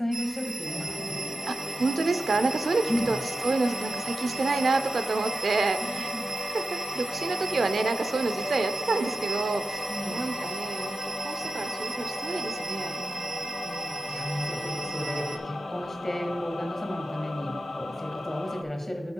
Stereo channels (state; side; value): normal; both; correlation 0.92